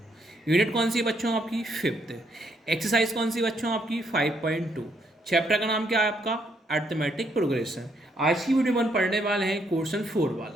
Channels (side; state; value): both; normal; correlation 0.73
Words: यूनिट कौन सी बच्चों आपकी? 5th। एक्सरसाइज कौन सी बच्चों आपकी? 5.2। चैप्टर का नाम क्या है आपका? Arithmetic progression. आज की वीडियो में हम पढ़ने वाले हैं क्वेश्चन 4